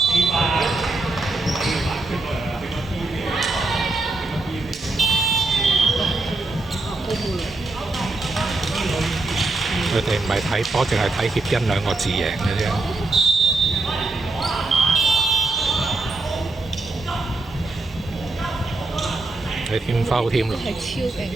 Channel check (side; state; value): left; quieter; 3.1 dB